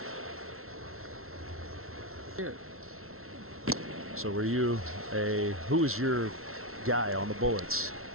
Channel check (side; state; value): left; late; 0.62 ms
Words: So were you who is your guy on the Bullets?